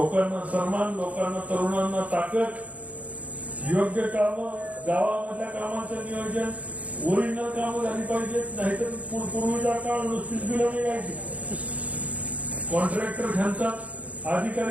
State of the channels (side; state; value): left; late; 0.068 ms